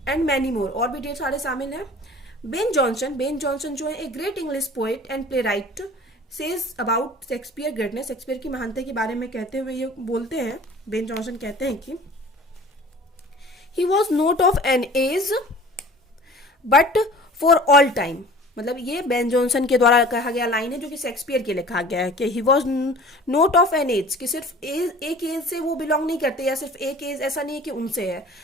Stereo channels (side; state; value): both; normal; correlation 0.45